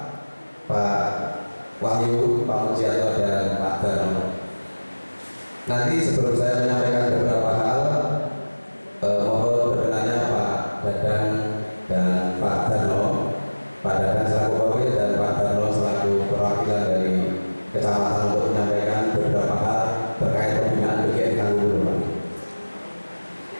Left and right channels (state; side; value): inverted; both; correlation -1.00